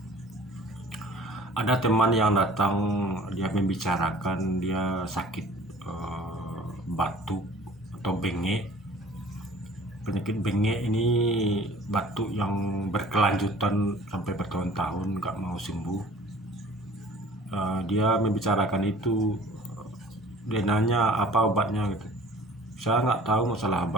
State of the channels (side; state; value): both; normal; correlation 0.48